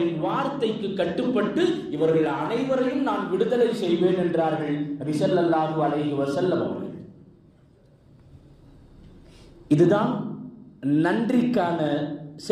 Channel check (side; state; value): both; identical; correlation 1.00